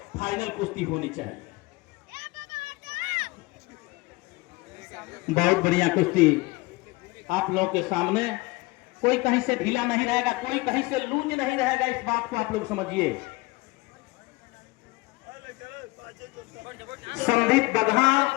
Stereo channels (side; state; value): right; quieter; 23.4 dB